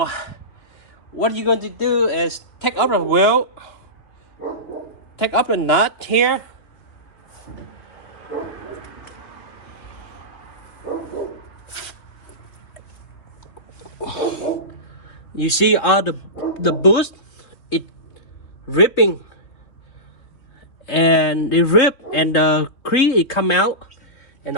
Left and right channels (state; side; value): late; right; 3.2 ms